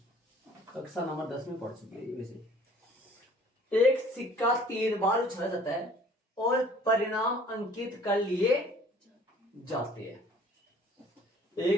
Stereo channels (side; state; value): both; normal; correlation 0.53